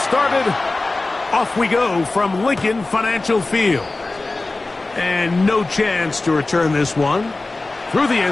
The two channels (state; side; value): quieter; right; 3.2 dB